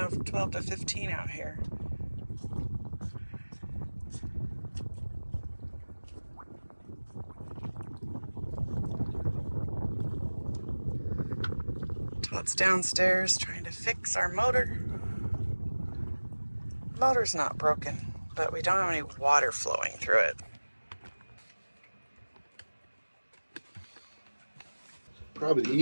12 to 15 out here. Todd's downstairs trying to fix our motor. Motor's not broken, but we don't have any water flowing through it. Probably the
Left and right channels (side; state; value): both; inverted; correlation -1.00